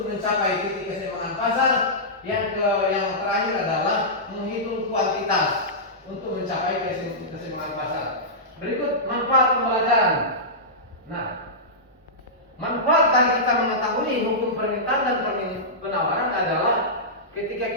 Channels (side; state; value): both; normal; correlation -0.15